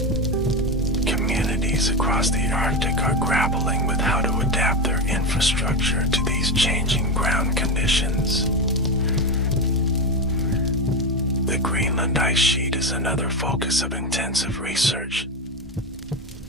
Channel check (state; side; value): normal; both; correlation 0.15